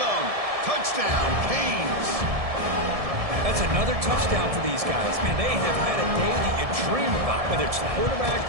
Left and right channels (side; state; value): left; late; 1.7 ms